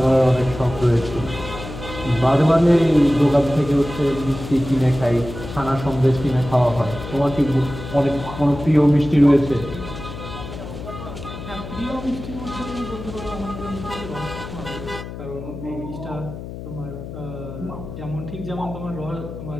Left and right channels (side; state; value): left; noise; hum, 10 dB below the sound